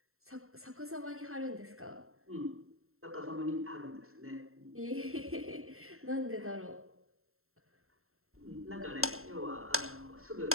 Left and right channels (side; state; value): left; late; 0.62 ms